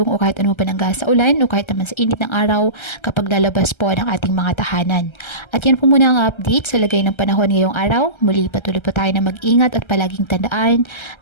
o kahit anong panangga sa ulan o kahit naman sa init ng araw kapag lalabas po ng ating mga tahanan. At yan po muna ang update sa lagay ng panahon ngayong araw. Muli patuloy po tayo na mag-ingat at palaging tandaan,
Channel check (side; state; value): right; late; 1.3 ms